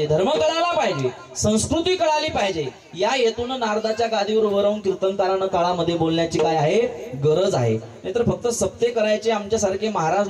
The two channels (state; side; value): identical; both; correlation 1.00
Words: धर्म कळाला पाहिजे, संस्कृती कळाली पाहिजे. या हेतून नारदाच्या गादीवर उभं राहून कीर्तनकारांना काळामध्ये बोलण्याची काय आहे? गरज आहे. नाहीतर फक्त सप्ते करायचे, आमच्यासारखे महाराज